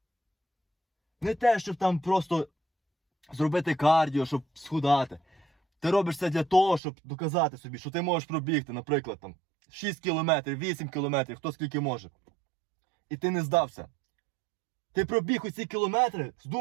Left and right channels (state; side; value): drops out; left; at 6.8 s